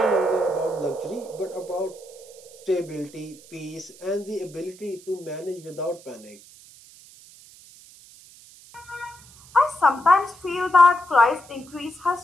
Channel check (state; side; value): noise; right; hiss, 22 dB below the sound